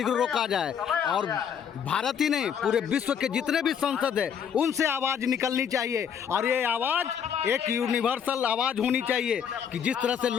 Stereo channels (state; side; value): quieter; right; 7.9 dB